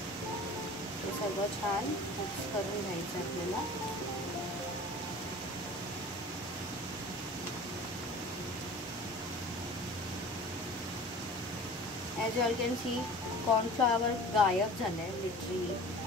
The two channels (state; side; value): normal; both; correlation 0.41